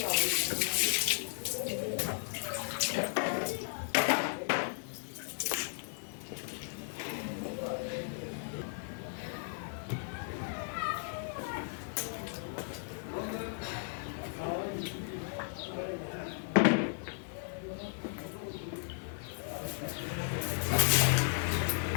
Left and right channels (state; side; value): silent; right; digital silence